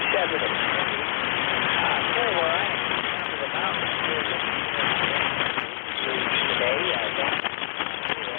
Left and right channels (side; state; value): right; silent; digital silence